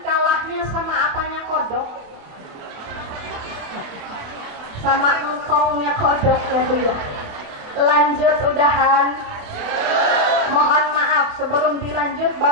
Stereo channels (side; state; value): left; late; 28 ms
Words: kalahnya sama apanya kodok? Sama engkongnya kodok ya Bu ya. Lanjut udahan. Mohon maaf sebelum dilanjut,